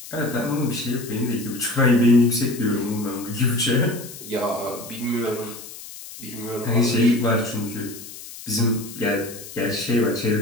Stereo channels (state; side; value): noise; left; hiss, 14 dB below the sound